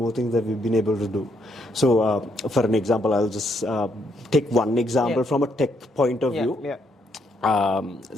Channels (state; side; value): normal; both; correlation 0.74